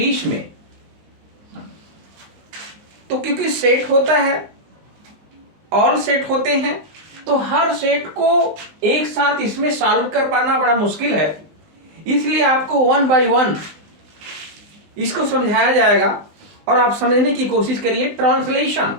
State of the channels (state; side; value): late; left; 19 ms